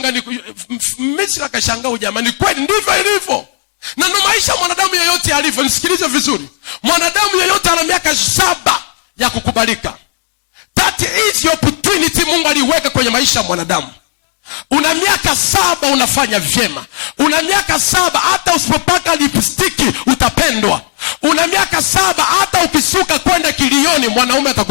Misri akashangaa, jamani, kweli ndivyo ilivyo? Na ndo maisha mwanadamu yoyote alivyo. Nisikilize vizuri, mwanadamu yoyote ana miaka 7 ya kukubalika. That is your opportunity Mungu aliweka kwenye maisha ya mwanadamu. Una miaka 7 unafanya vyema. Una miaka 7 hata usipopaka lipstiki utapendwa. Una miaka 7 hata ukisuka kwenda kilioni mwanaume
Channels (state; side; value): silent; right; digital silence